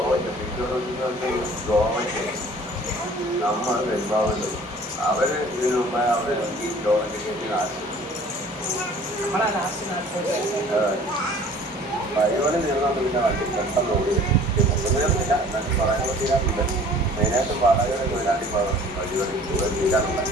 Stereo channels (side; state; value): both; normal; correlation 0.50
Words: ഗോവയ്ക്ക് നമ്മൾ പെരുമ്പാവുണ്ട്. അവർ ഇതിനു മുമ്പേ അവർ ഈ ഗോവയ്ക്ക് കയറ്റി നാശം വഴിപണി തീർന്നാൽ പിന്നെ വണ്ടി പെട്ടെന്ന് ഓടി ഒന്നും തീർന്നില്ല. എന്നാലും പറയാനുള്ള തീരാറുണ്ട്. മെയിനായിട്ട് വാടകയുടെ തൊഴിലാളി വഴിപണി തീരാറുണ്ട്.